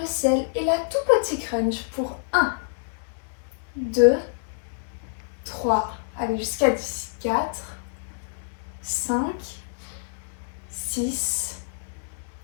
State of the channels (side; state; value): right; silent; digital silence